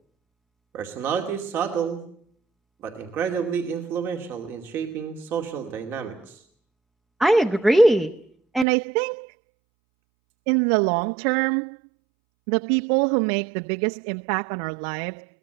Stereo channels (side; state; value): left; drops out; at 8.7 s